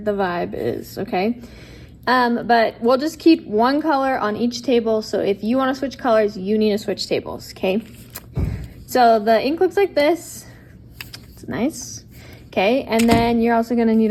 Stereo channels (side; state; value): both; identical; correlation 1.00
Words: vibe is, okay? But we'll just keep one color on each table. So if you want to switch colors, you need to switch tables, okay? So the ink looks like this. It's nice. Okay, and then you're also gonna need